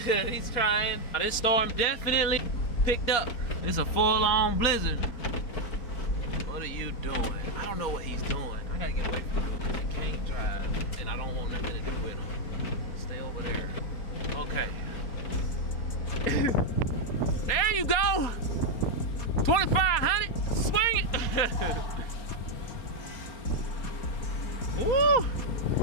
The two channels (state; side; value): late; right; 4.2 ms